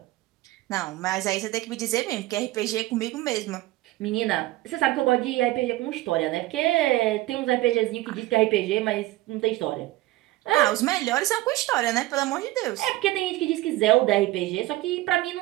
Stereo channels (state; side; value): quieter; left; 17.7 dB